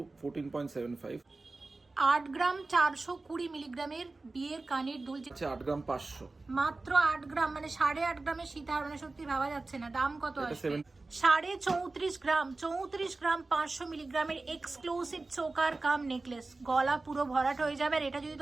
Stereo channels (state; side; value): quieter; left; 3.4 dB